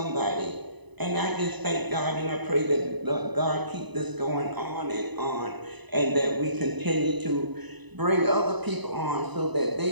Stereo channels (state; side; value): late; left; 1.0 ms